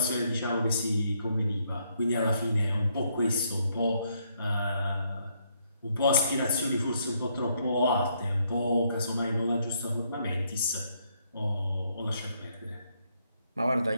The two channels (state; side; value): inverted; both; correlation -0.73